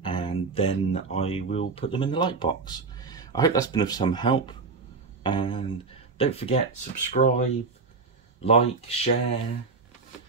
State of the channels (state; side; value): quieter; left; 4.3 dB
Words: and then I will put them in the light box. I hope that's been of some help, and don't forget, subscribe, like, share,